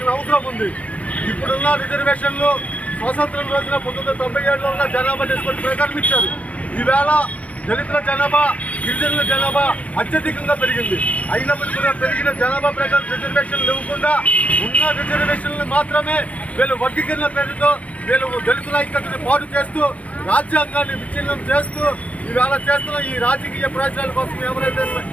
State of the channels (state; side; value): late; right; 0.066 ms